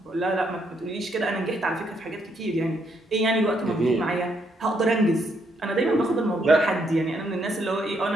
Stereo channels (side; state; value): both; normal; correlation 0.74